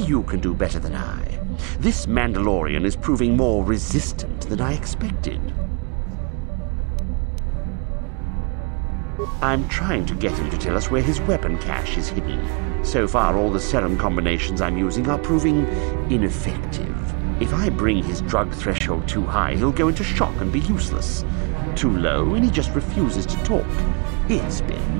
can do better than I. This Mandalorian is proving more resistant than I expected. I'm trying to get him to tell us where his weapon cache is hidden. So far, all the serum combinations I'm using are proving ineffective. If I bring his drug threshold too high, he'll go into shock and be useless. Too low, and he just refuses to talk. It's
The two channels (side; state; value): left; quieter; 33.8 dB